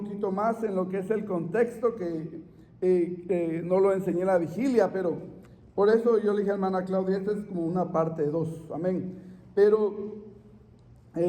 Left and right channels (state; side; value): identical; both; correlation 1.00